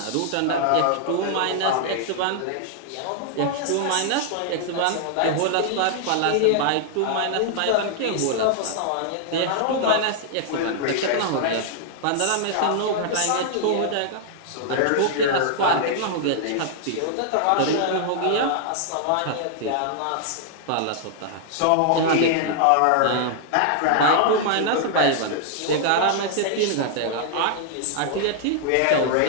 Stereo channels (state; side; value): different; both; correlation -0.01